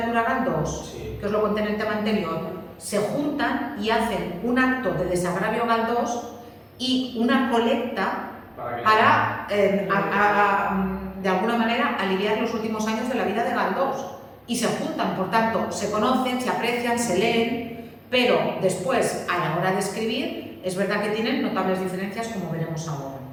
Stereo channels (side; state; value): both; identical; correlation 1.00